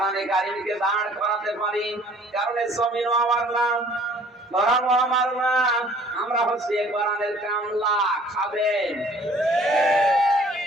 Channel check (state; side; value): normal; both; correlation 0.54